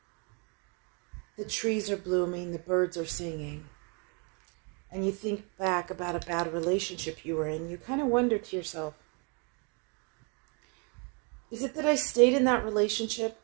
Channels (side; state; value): left; quieter; 35.2 dB